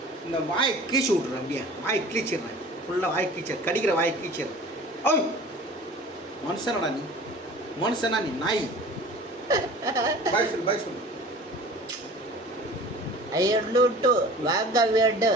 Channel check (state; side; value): normal; both; correlation 0.43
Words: இந்த வாயை கீச்சு விட்டுறேன் அப்படியே வாயை கீச்சிடுறேன் ஃபுல்லாக வாயை கீச்ச கடிக்கிற வாயை கீச்சிடுறேன் ஓய் மனுஷனடா நீ மனுஷனா நீ நாய் பாய் சொல்லு ஐயட்டு வாங்க வீடு